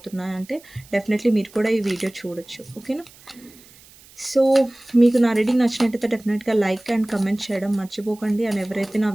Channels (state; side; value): noise; right; hiss, 24 dB below the sound